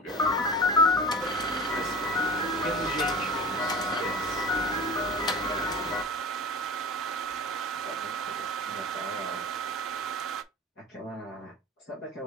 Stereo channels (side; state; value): both; normal; correlation 0.34